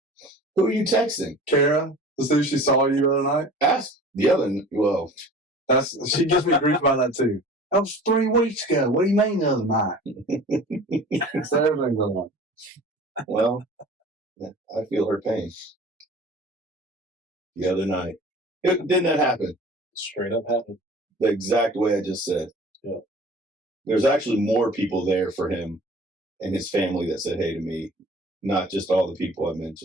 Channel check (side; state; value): both; normal; correlation 0.43